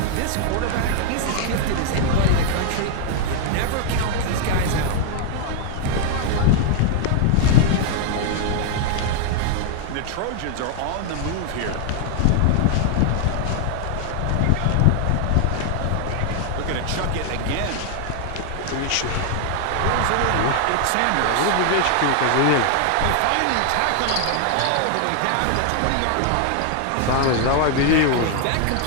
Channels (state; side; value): different; both; correlation 0.00